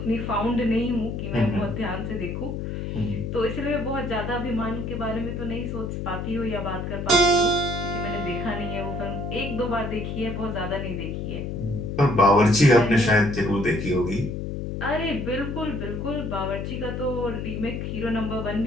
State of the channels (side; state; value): left; noise; hum, 4 dB below the sound